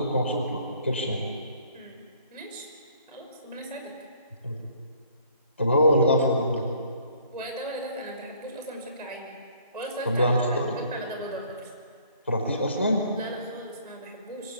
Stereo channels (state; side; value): inverted; both; correlation -0.58